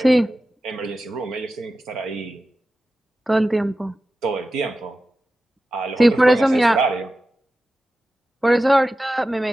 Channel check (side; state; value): both; normal; correlation 0.93